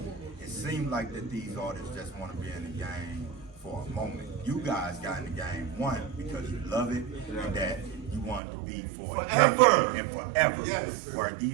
it seems like that these artists just want to be in the game for a moment. You guys got in the game, one, because you love it, and that you want to be for a Forever. decade and forever. Yes. Where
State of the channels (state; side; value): drops out; left; at 8.4 s